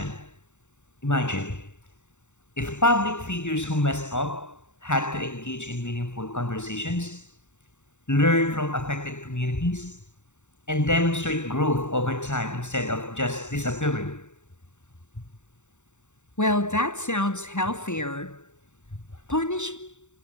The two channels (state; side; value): late; right; 0.84 ms